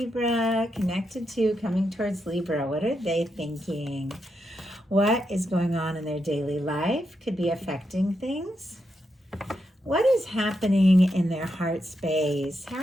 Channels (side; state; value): both; normal; correlation 0.84